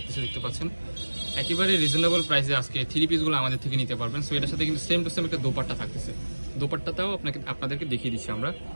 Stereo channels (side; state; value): both; inverted; correlation -1.00